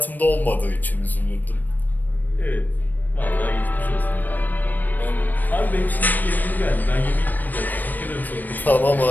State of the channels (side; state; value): right; late; 0.087 ms